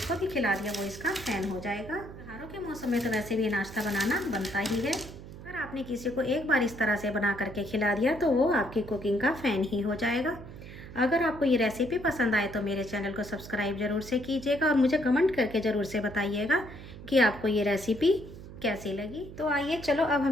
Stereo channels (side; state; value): right; noise; hum, 14 dB below the sound